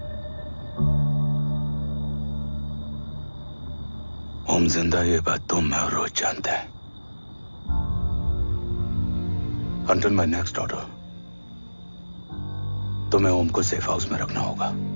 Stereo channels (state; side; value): inverted; both; correlation -1.00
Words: ओम जिंदा, ये बात तुम मैं और रोज जानते हैं। Until my next order, तुम्हें ओम को सेफ हाउस में रखना होगा।